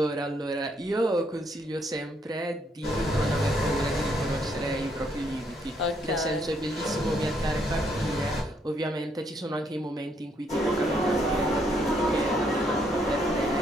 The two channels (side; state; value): both; normal; correlation 0.72